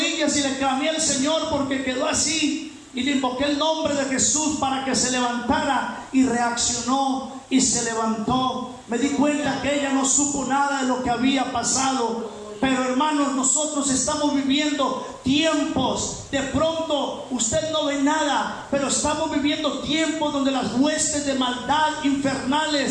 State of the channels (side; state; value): both; identical; correlation 1.00